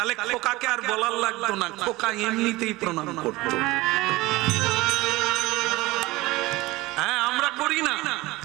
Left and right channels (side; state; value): left; quieter; 20.1 dB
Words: খোকাকে আর বলার লাগতো না, খোকা এমনিতেই প্রণাম করতো। হ্যাঁ, আমরা করি না,